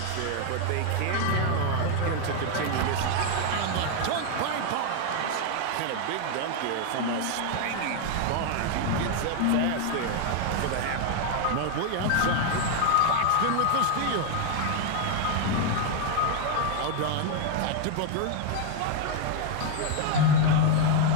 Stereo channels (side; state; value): both; different; correlation 0.01